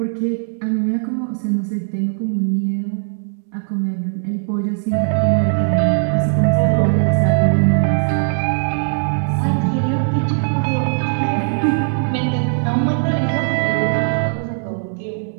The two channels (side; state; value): left; silent; digital silence